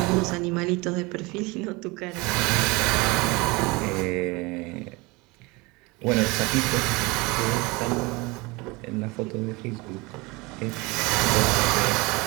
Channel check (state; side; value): quieter; left; 24.7 dB